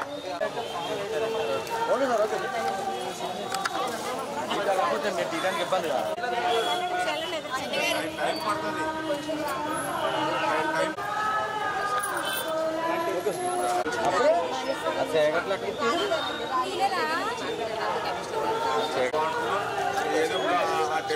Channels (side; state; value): both; identical; correlation 1.00